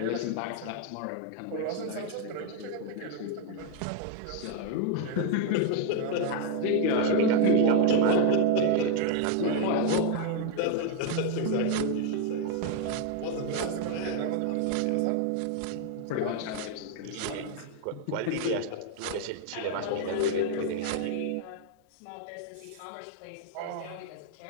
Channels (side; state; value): both; different; correlation 0.01